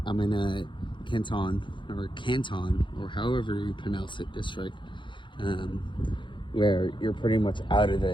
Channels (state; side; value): late; right; 0.23 ms